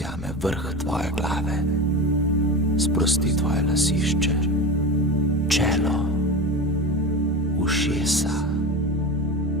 vrh tvoje glave, sprosti tvoje lasišče, čelo, ušesa,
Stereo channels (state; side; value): normal; both; correlation 0.26